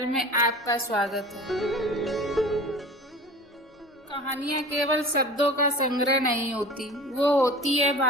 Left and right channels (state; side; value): normal; both; correlation 0.38